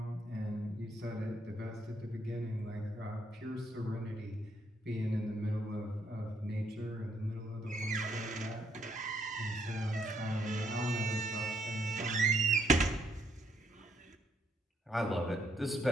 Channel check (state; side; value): normal; both; correlation 0.72